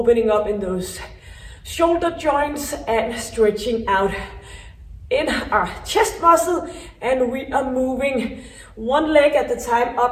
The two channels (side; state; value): both; identical; correlation 1.00